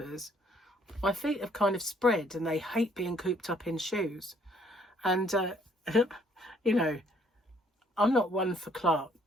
my feet have kind of spread, and they hate being cooped up in shoes. And you know, I'm not one for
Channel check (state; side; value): normal; both; correlation 0.64